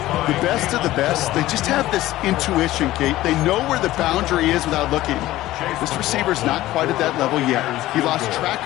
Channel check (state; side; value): quieter; right; 15.9 dB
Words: The best of the best, they just have this intuition, Kate. They know where the boundary is without looking. This receiver's not quite at that level yet. He lost track